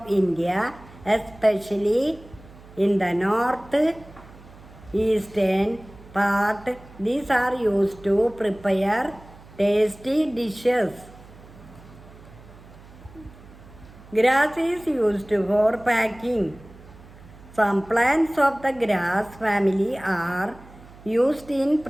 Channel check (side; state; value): right; noise; hum, 21 dB below the sound